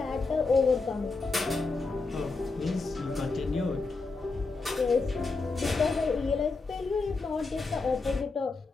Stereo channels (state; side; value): quieter; right; 3.9 dB